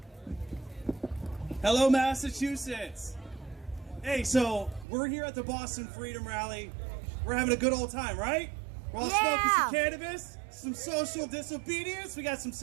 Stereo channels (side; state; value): left; drops out; at 4.9 s